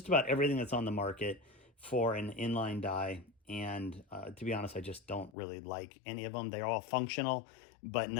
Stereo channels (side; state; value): right; drops out; at 5.3 s